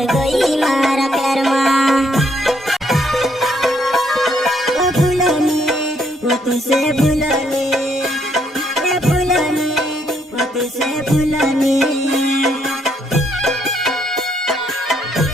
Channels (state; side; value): normal; both; correlation 0.71